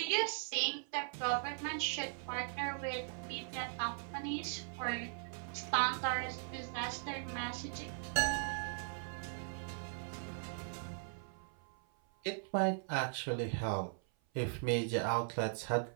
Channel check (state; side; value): silent; left; 52 dB below the other